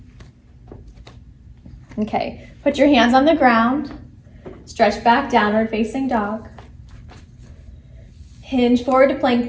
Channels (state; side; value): identical; both; correlation 1.00